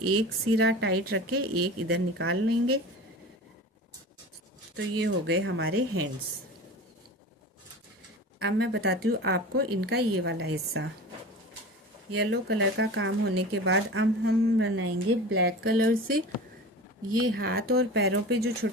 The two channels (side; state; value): both; normal; correlation 0.34